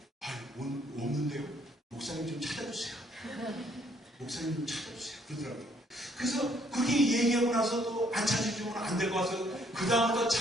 없는데요. 목사님 좀 찾아주세요. 목사님 좀 찾아주세요. 그러더라고요. 그래서 그렇게 얘기하고 나서 또 안 찾아주면 안 될 것 같아서 그 다음부터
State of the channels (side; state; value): both; normal; correlation 0.66